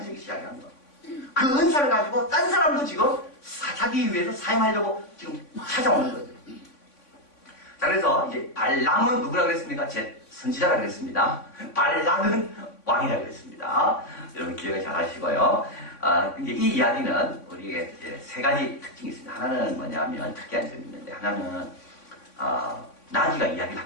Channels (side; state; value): right; late; 3.5 ms